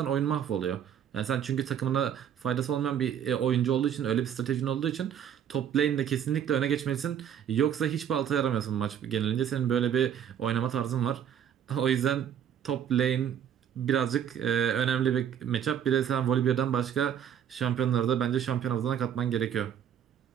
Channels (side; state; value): left; quieter; 9.1 dB